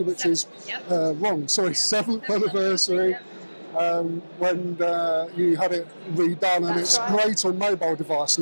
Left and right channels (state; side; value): inverted; both; correlation -1.00